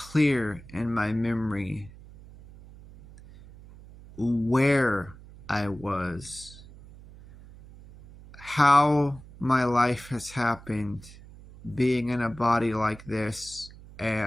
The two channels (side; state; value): right; noise; hum, 19 dB below the sound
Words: in my memory where I was, how my life has happened, being in a body like this,